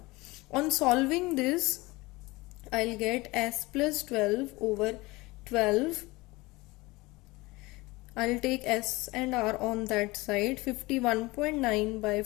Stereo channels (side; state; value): right; quieter; 22.1 dB